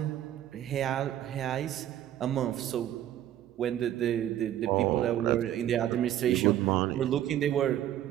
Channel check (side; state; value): left; quieter; 11.9 dB